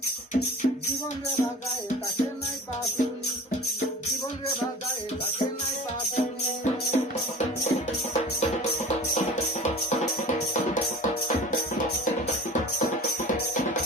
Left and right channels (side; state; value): both; normal; correlation 0.39